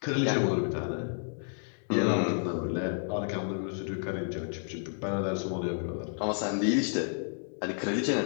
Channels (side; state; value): right; silent; digital silence